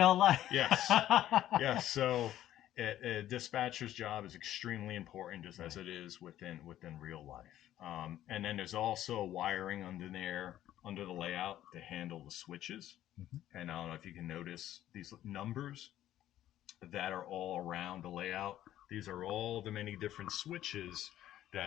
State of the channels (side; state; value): right; quieter; 12.7 dB